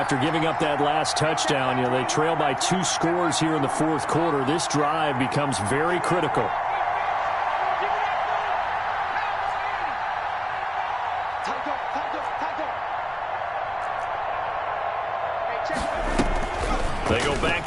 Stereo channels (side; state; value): both; identical; correlation 1.00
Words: giving up that last touchdown, they trail by 2 scores here in the fourth quarter. This drive becomes very critical. They go